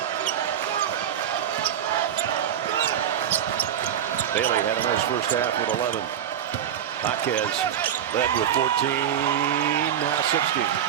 Bailey had a nice first half with 11. Jaquez led with 14, now 16.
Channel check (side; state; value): left; quieter; 9.7 dB